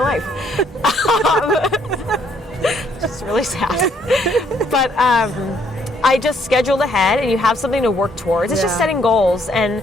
Just really sad. But I just scheduled ahead, and you have something to work towards. It's just setting goals, and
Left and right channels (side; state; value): both; normal; correlation 0.68